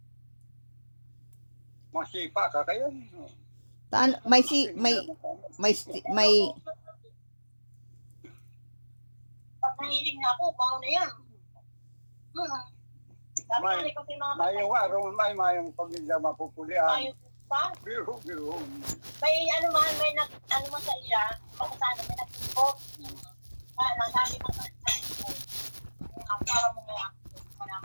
Masipa ka kaya. may Pag nahiling na ako, baon na yan. Sabi ko, May- kasi mga Mayong araw, mayong pamilya mapupulian. Ayaw pa. Biro. May ano man, may ano man sa iya, kung saan may nagtipot. Sabi mo sa ang para mo nga.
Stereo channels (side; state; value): both; inverted; correlation -1.00